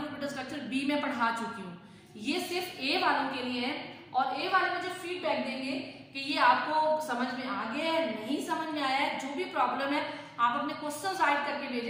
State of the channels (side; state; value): both; identical; correlation 1.00